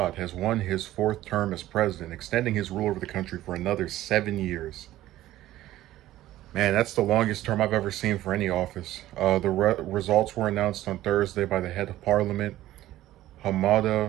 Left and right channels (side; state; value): left; quieter; 14.7 dB